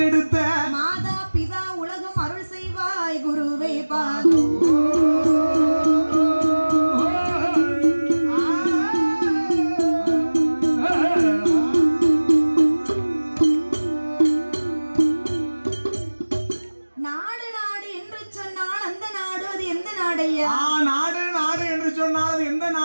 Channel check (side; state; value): both; inverted; correlation -1.00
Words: மாதா பிதா உலகம் அருள் செய்வாய் குருவே பாதோ. நாடு நாடு என்று சொன்னால் அந்த நாடு அது எந்த நாடையா? நாடு நாடு என்று சொன்னால் அது எந்த